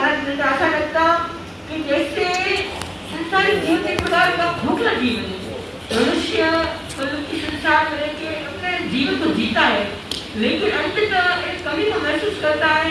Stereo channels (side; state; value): both; identical; correlation 1.00